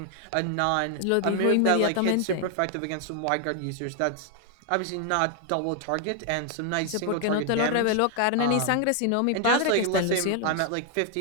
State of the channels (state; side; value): different; both; correlation 0.00